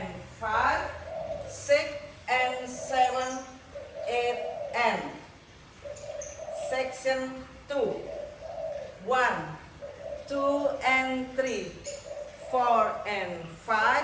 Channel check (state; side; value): identical; both; correlation 1.00